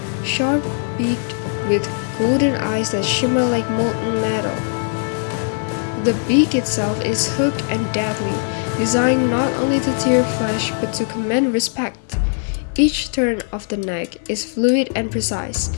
sharp-beaked with golden eyes that shimmer like molten metal. The beak itself is hooked and deadly, designed not only to tear flesh but to command respect. Each turn of the neck is fluid and precise,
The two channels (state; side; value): silent; right; digital silence